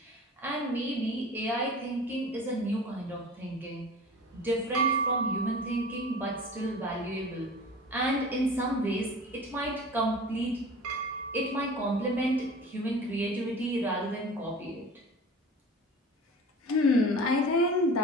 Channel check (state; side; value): normal; both; correlation 0.39